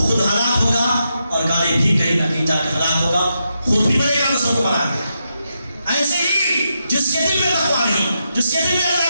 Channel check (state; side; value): inverted; both; correlation -0.84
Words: خود ہلاک ہوگا، اور گاڑی بھی کہیں نہ کہیں جا کے ہلاک ہوگا، خود بھی بڑے گا، دوسروں کو بڑھا گا. ایسے ہی جس کے دل میں تقویٰ نہیں، جس کے دل میں